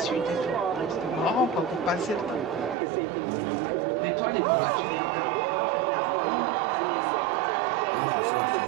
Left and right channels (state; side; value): drops out; left; at 2.8 s